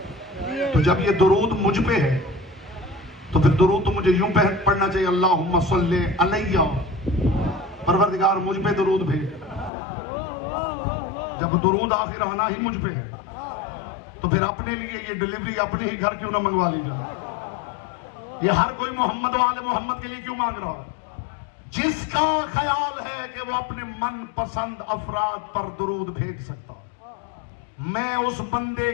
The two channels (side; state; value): right; drops out; at 9.7 s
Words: तो जब ये दुरूद मुझ पे है तो फिर दुरूद तो मुझे यूं पढ़ना चाहिए, अल्लाहुम्मा सल्ले अलैया, परवरदिगार मुझ पे दुरूद भेज। जब दुरूद आखिर आना ही मुझ पे है तो फिर अपने लिए ये डिलीवरी अपने ही घर क्यों ना मंगवा ली जाए। ये हर कोई मोहम्मद वाले मोहम्मद के लिए क्यों मांग रहा है? जिसका ख्याल है कि वो अपने मन पसंद अफराद पर दुरूद भेज सकता, मैं उस बंदे